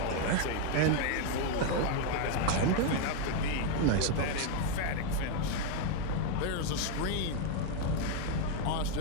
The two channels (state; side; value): different; both; correlation 0.01